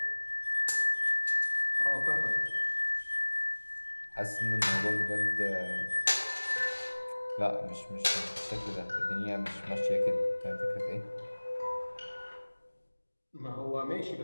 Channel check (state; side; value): inverted; both; correlation -1.00